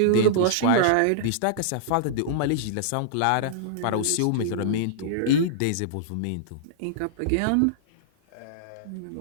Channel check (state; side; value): different; both; correlation -0.02